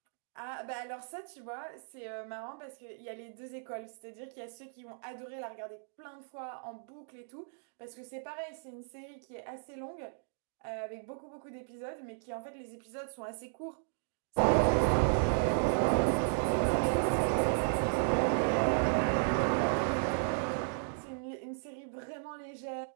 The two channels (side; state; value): left; silent; digital silence